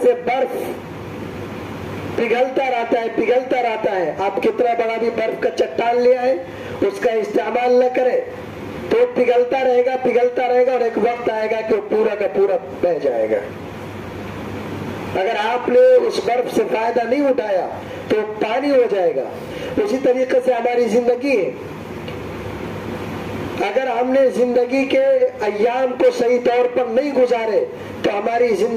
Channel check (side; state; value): both; identical; correlation 1.00